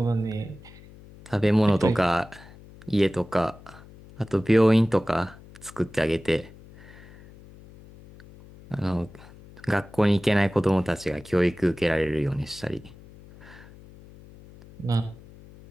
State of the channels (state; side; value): noise; left; hum, 21 dB below the sound